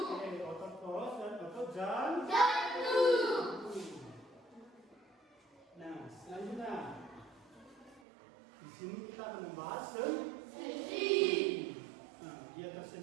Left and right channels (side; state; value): left; drops out; at 8.0 s